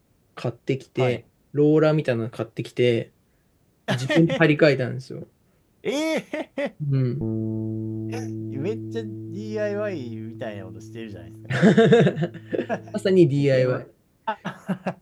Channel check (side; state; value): both; identical; correlation 1.00